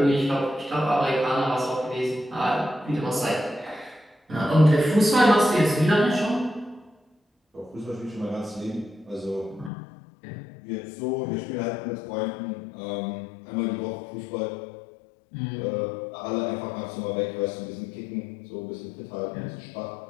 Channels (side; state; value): right; drops out; at 9.7 s